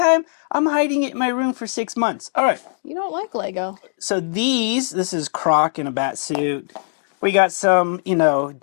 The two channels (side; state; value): right; silent; digital silence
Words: I'm hiding it in my room for 6 months. All right. You don't like Lego. So this is Croc in a bat suit. We got some,